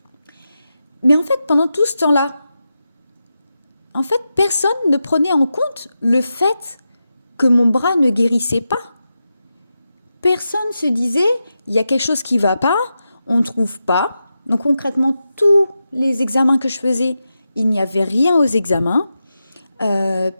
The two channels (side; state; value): both; inverted; correlation -0.89